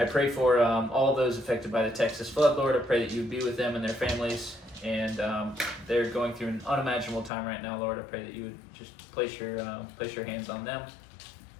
pray for all those affected by the Texas flood, Lord. I pray that you would be with them and their families. And they're going through an unimaginable time right now, Lord. I pray that you would just place your hands on them.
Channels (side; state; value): right; drops out; at 7.3 s